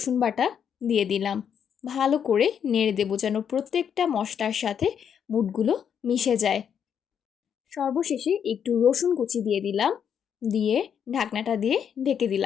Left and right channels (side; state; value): right; quieter; 8.1 dB